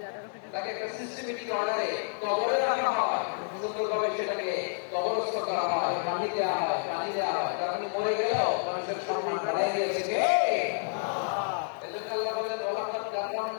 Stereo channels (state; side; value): silent; right; 58 dB below the other